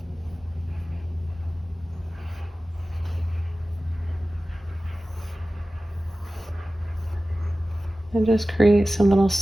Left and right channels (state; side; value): normal; both; correlation 0.96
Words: And just create some little